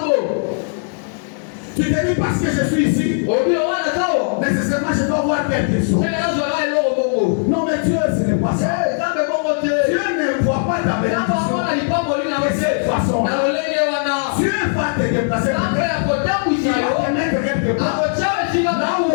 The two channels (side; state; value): right; silent; digital silence